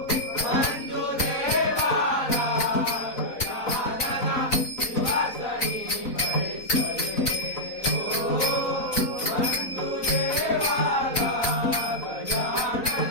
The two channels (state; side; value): late; right; 4.0 ms